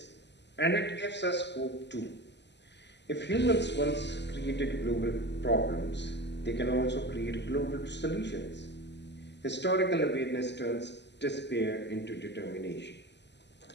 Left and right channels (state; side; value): late; right; 0.50 ms